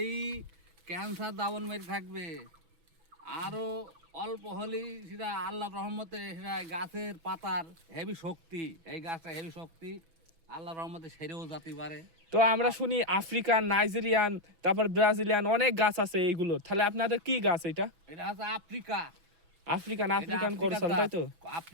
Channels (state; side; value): late; left; 6.1 ms